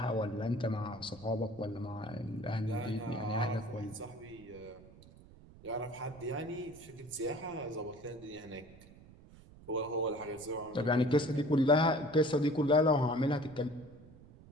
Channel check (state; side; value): noise; right; rumble, 21 dB below the sound